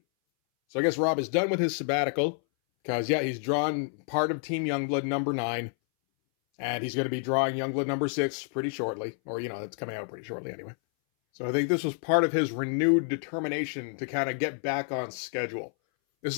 So I guess Rob is done with his sabbatical, because, yeah, he's drawn part of Team Youngblood number 9, and he's going to be drawing Youngblood number 6 pretty shortly. Or, you know, it's coming out pretty shortly anyway. So I think this was part of his renewed determination to kind of get back on schedule. This is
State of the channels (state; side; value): silent; right; 59 dB below the other